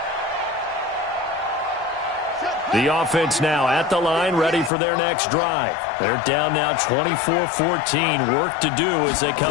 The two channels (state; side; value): drops out; right; at 4.7 s